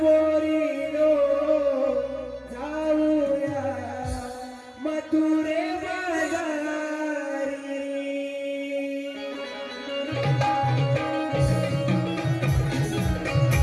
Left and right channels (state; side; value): identical; both; correlation 1.00